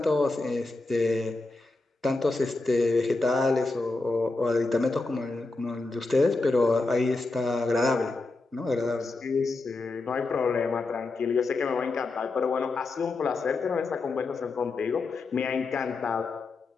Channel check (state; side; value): quieter; right; 3.5 dB